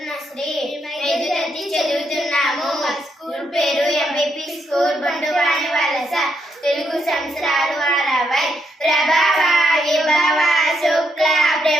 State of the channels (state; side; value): normal; both; correlation 0.78